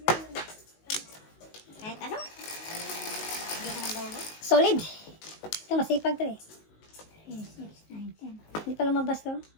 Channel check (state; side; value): late; right; 19 ms